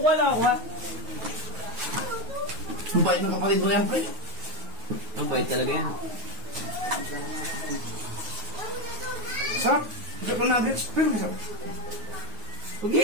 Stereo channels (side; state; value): left; late; 9.4 ms